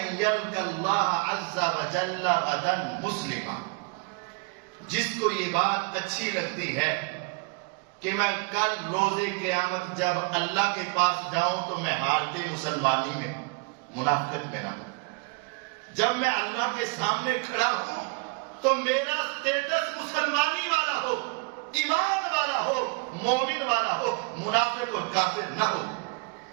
یلقى اللہ عز وجل غدا مسلما، جس کو یہ بات اچھی لگتی ہے کہ میں کل روز قیامت جب اللہ کے پاس جاؤں تو میں حالت مسلمانی میں، منافقت میں نہ ہوں، جب میں اللہ کے سامنے کھڑا ہوں تو میرا سٹیٹس مسلمانی والا ہو، ایمان والا ہو، مومن والا ہو، منافق اور کافر نہ ہو۔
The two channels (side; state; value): left; quieter; 32.4 dB